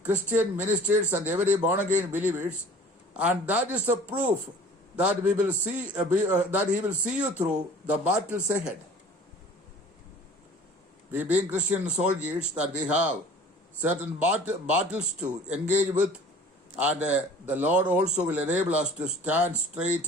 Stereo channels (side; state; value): both; normal; correlation 0.46